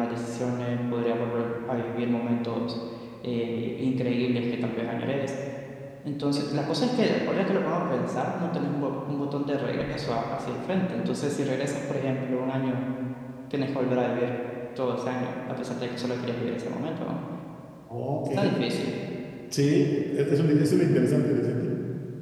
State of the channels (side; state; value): both; identical; correlation 1.00